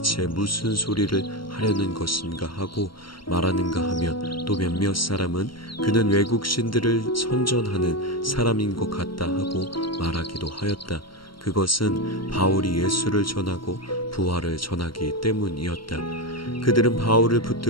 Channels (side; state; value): right; late; 0.73 ms